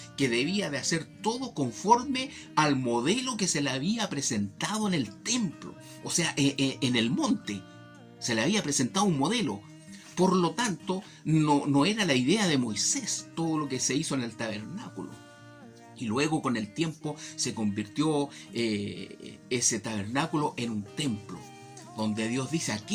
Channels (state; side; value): identical; both; correlation 1.00